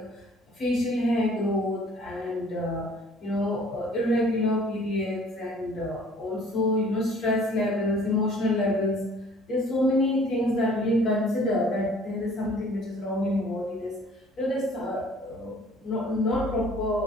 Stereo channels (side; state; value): both; normal; correlation 0.54